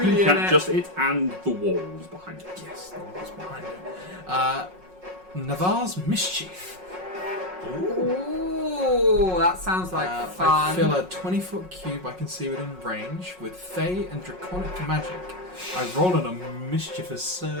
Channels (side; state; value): left; late; 5.5 ms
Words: in can it. just it and the walls behind it. Yes, the wall's behind it. Navarre's Mischief. Ooh, that sounds like I fun. fill a 20-foot cube I can see within range with Fey and Draconic magic. I roll on a mischievous